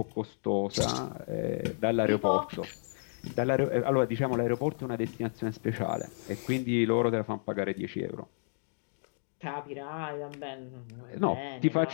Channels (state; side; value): silent; right; digital silence